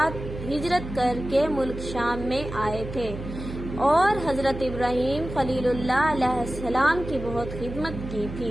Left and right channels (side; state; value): right; noise; hum, 9 dB below the sound